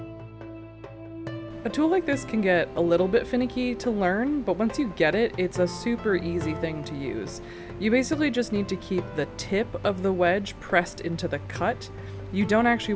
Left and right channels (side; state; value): both; identical; correlation 1.00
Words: A tool like this can get a little bit finicky to learn, but once you get it, it's a super easy thing to use. You basically just need to keep the tip of the wedge pressed into the cut. You don't actually